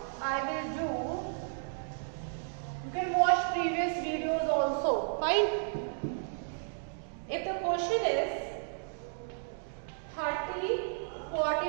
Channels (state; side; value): silent; left; digital silence